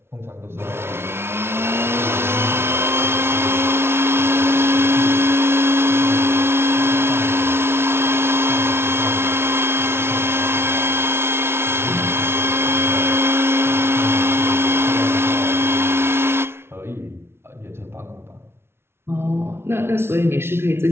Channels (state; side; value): late; left; 0.12 ms